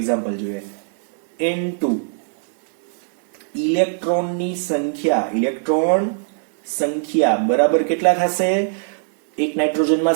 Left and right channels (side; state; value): left; silent; digital silence